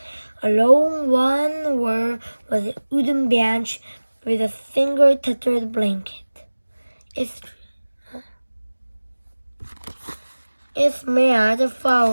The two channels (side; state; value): both; inverted; correlation -1.00